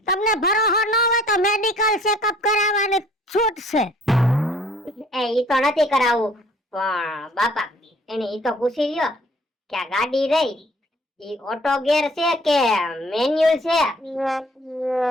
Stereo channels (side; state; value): both; normal; correlation 0.56